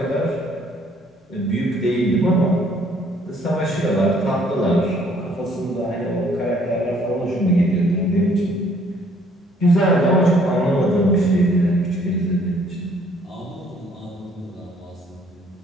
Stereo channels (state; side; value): normal; both; correlation 0.62